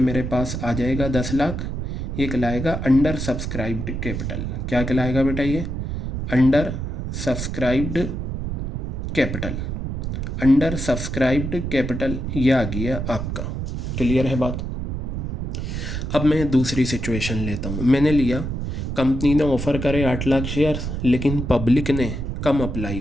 पास आ जाएगा 10 लाख। ये कहलाएगा अंडर सब्सक्राइब्ड कैपिटल। क्या कहलाएगा बेटा? ये under subscribed capital. Under subscribed capital ये आ गया आपका। क्लियर है बात? अब मैं दूसरी सिचुएशन लेता हूँ। मैंने लिया कंपनी ने ऑफ़र करे 8 लाख शेयर, लेकिन पब्लिक ने कम अप्लाई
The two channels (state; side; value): noise; right; rumble, 4 dB below the sound